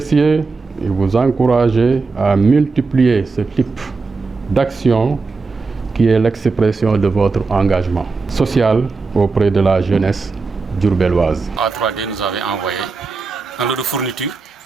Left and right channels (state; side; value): quieter; left; 4.2 dB